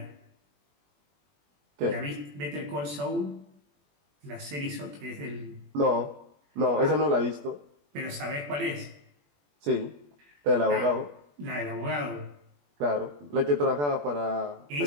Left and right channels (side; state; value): left; late; 21 ms